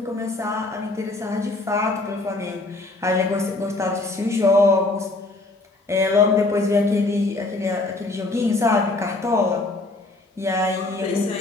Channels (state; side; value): quieter; right; 3.0 dB